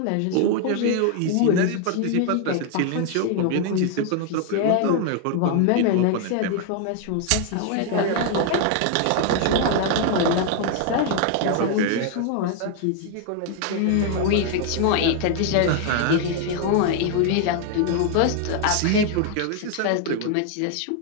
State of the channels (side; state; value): both; different; correlation 0.00